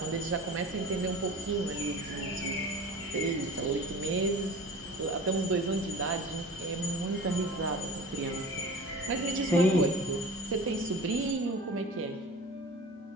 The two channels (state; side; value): normal; both; correlation 0.38